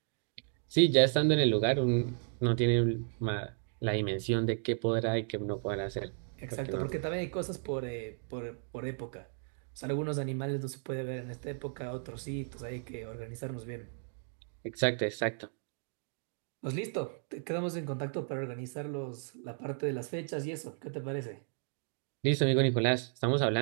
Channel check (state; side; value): silent; left; 55 dB below the other